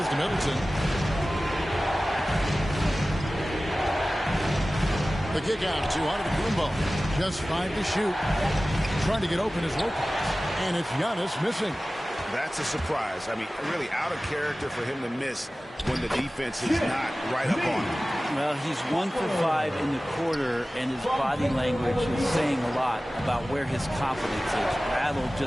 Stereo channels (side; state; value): both; normal; correlation 0.97